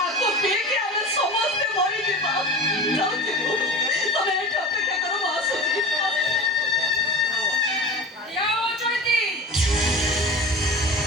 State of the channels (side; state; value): both; normal; correlation 0.34